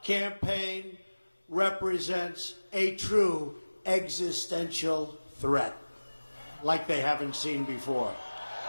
campaign represents a true existential threat, like they haven't seen before.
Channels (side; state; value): both; inverted; correlation -1.00